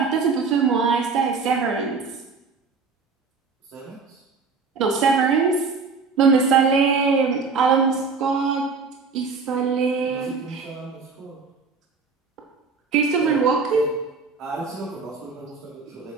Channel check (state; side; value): quieter; left; 4.8 dB